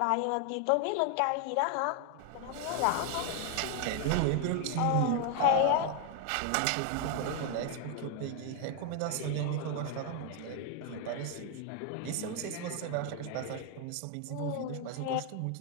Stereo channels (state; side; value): different; both; correlation 0.00